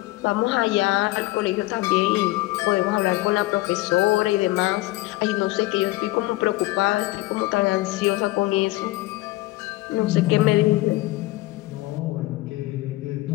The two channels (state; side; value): quieter; right; 19.1 dB